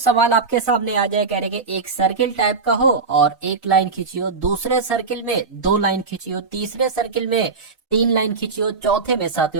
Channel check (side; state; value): left; quieter; 4.5 dB